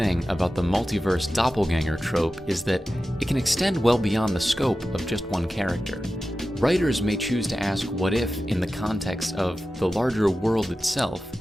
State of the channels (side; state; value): both; normal; correlation 0.93